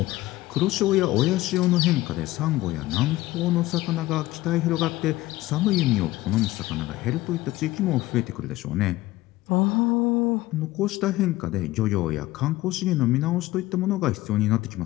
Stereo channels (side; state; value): right; quieter; 17.7 dB